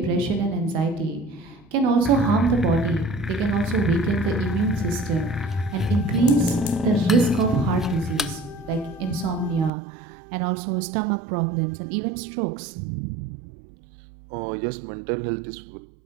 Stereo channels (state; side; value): drops out; left; at 9.7 s